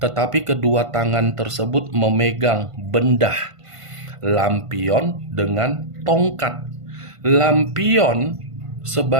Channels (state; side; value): late; left; 1.5 ms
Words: tetapi kedua tangan tersebut memegang benda, lampion dengan tongkat. Lampion